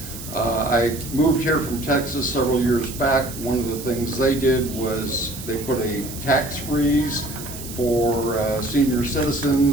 I moved here from Texas several years back. One of the things they did was they put a tax freeze for senior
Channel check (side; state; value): right; noise; hiss, 12 dB below the sound